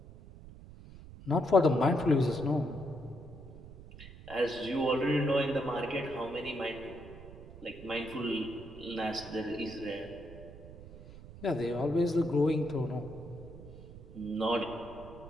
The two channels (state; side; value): noise; right; rumble, 16 dB below the sound